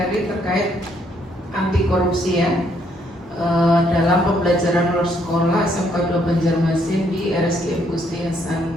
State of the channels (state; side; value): normal; both; correlation 0.70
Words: terkait anti korupsi ya. Dalam pembelajaran luar sekolah SMK 2 Banjarmasin di RSIM Gusti